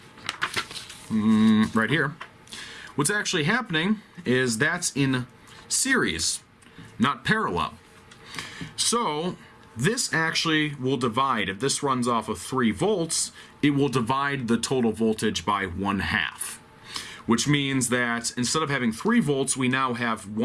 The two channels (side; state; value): both; identical; correlation 1.00